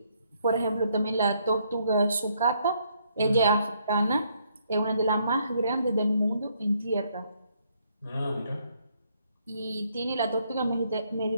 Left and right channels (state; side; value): inverted; both; correlation -0.71